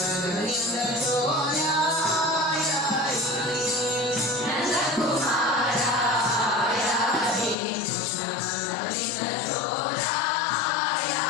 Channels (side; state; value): right; drops out; at 7.6 s